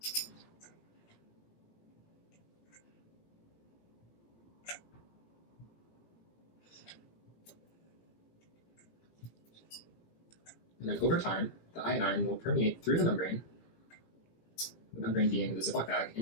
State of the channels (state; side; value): late; right; 17 ms